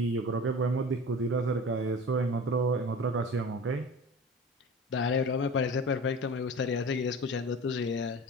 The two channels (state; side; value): normal; both; correlation 0.36